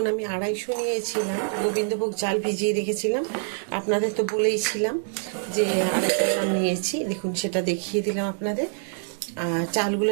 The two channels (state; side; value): silent; left; digital silence